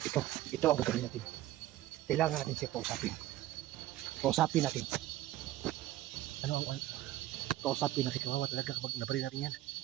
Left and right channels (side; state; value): left; quieter; 15.0 dB